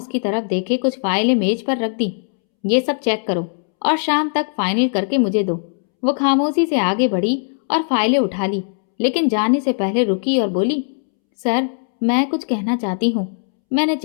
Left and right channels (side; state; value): right; silent; 66 dB below the other